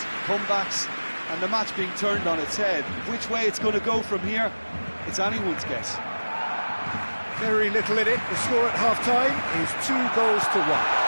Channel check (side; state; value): both; inverted; correlation -1.00